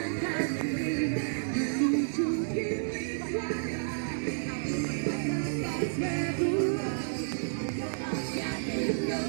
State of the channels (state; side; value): silent; left; digital silence